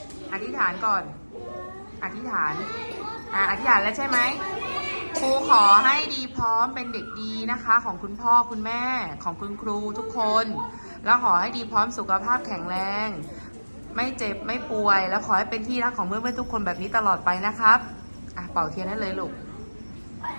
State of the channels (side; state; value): both; inverted; correlation -1.00